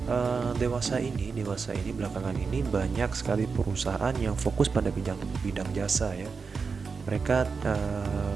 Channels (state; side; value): quieter; left; 5.1 dB